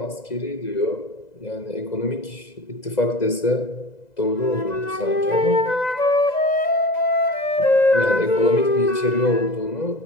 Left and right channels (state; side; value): late; right; 2.0 ms